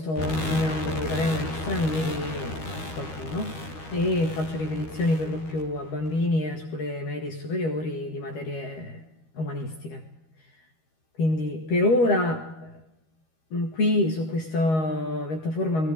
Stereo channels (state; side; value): late; right; 13 ms